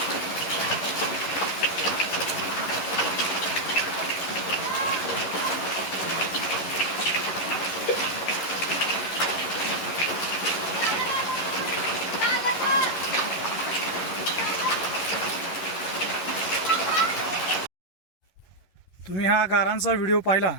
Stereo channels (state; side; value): late; right; 11 ms